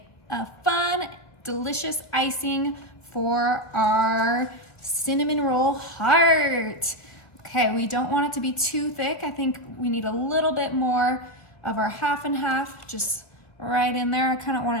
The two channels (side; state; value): right; late; 1.6 ms